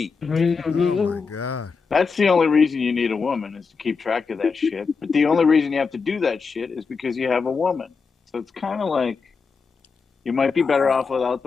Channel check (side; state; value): right; quieter; 5.0 dB